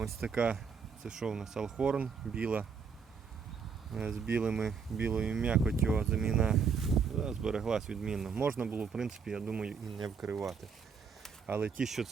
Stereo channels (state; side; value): quieter; left; 5.9 dB